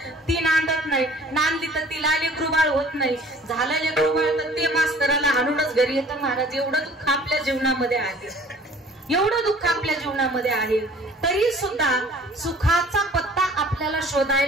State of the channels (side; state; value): both; normal; correlation 0.51